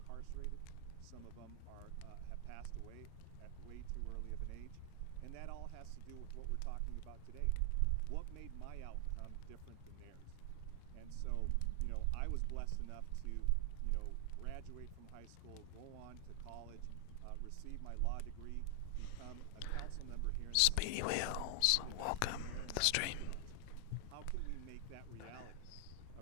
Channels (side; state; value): both; different; correlation 0.00